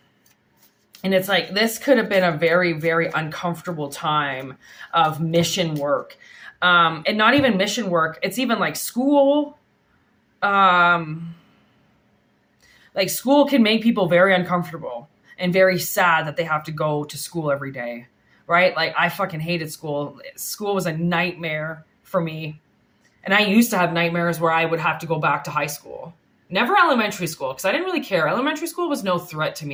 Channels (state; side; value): identical; both; correlation 1.00